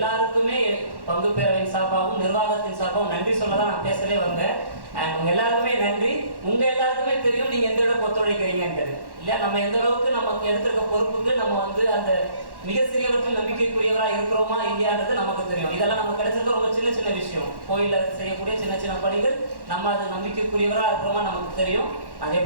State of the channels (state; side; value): late; left; 1.1 ms